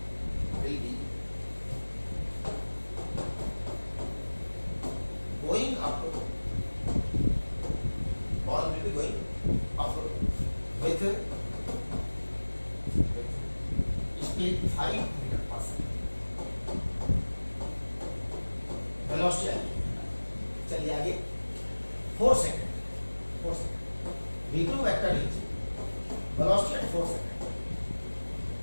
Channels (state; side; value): inverted; both; correlation -1.00